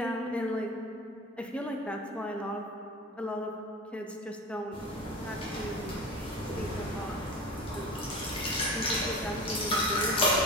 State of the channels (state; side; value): normal; both; correlation 0.33